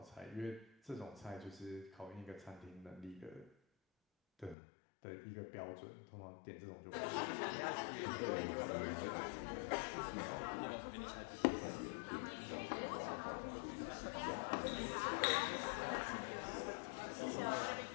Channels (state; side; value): drops out; right; at 4.5 s